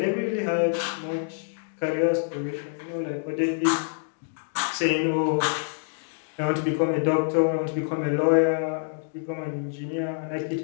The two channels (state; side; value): silent; right; 61 dB below the other